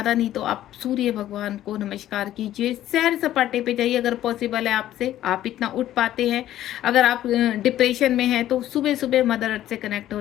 नहीं तो आप सूर्य भगवान को नमस्कार कीजिए, सैर सपाटे पे जाइए अगर पॉसिबल है आपसे, आप इतना उठ पाते हैं। अगर आप डिप्रेशन में हैं तो सुबह सुबह मदर अर्थ से कनेक्ट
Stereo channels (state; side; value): quieter; right; 12.9 dB